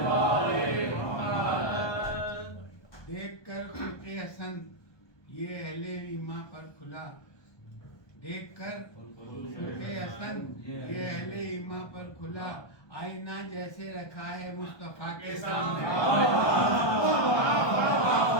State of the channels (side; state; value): right; late; 1.2 ms